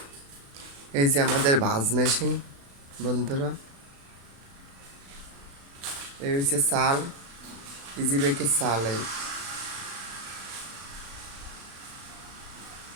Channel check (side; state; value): left; late; 35 ms